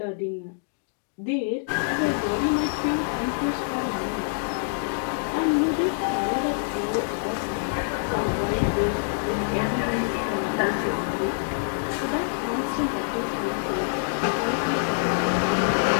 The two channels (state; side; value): silent; right; digital silence